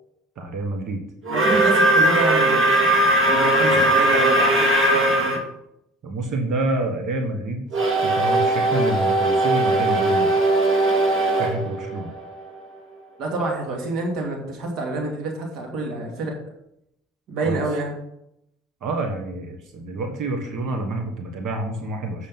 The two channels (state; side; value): normal; both; correlation 0.45